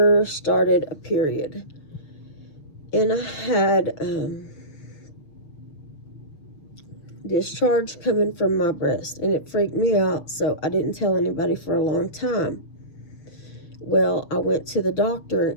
started a period, and I had discharge coming from my breast, and it freaked me out, so I didn't tell anybody for a long time. Well, I went to the doctor,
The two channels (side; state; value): right; late; 6.2 ms